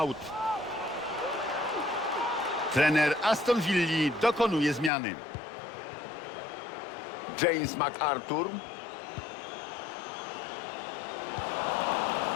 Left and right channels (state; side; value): drops out; right; at 4.9 s